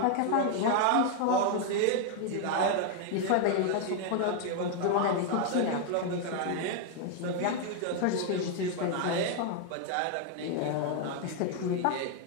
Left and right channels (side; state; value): both; different; correlation 0.00